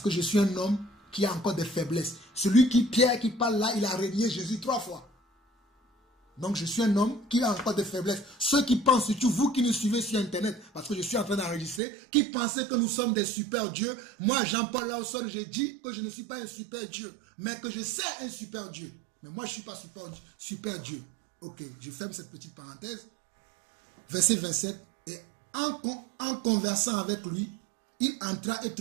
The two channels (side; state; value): left; drops out; at 11.8 s